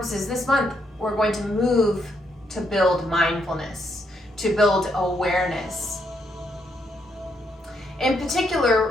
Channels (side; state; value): both; normal; correlation 0.76